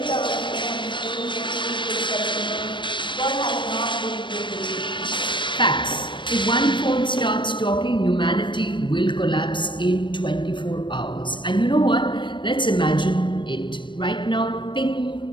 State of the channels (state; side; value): late; right; 0.23 ms